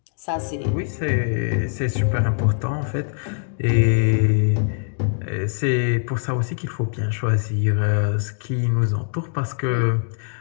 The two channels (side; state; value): right; silent; digital silence